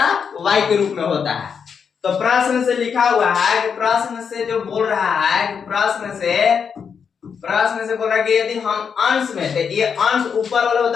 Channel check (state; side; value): quieter; right; 6.6 dB